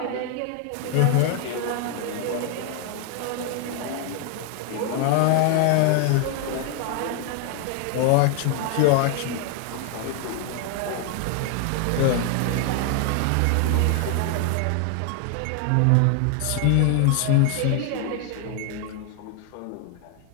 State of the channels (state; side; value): different; both; correlation 0.01